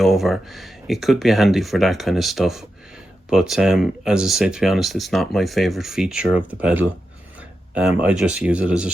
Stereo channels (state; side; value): normal; both; correlation 0.89